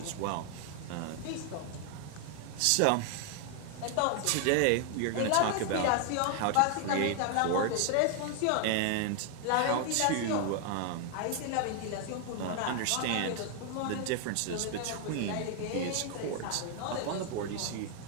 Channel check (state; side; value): different; both; correlation 0.00